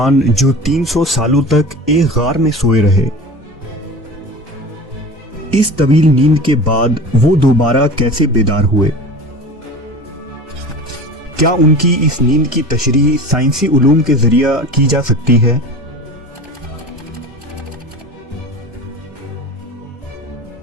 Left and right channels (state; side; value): normal; both; correlation 0.35